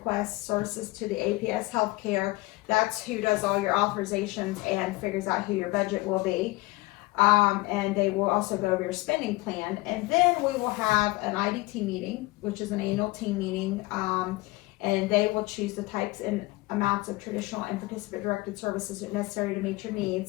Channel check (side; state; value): right; quieter; 21.6 dB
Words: services to the APS Healthcare. That's who does all your authorizations and figures out who your budget will be. And they will also go over your spending plan. And then we will have an IDT meeting, which is an annual team meeting, and they will choose the types and amounts of traditional and participant-directed services necessary to meet your